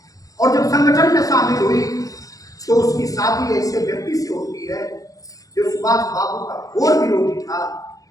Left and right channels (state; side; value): late; right; 0.17 ms